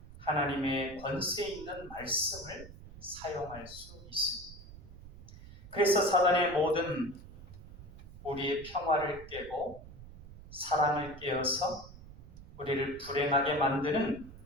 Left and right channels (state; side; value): noise; right; rumble, 17 dB below the sound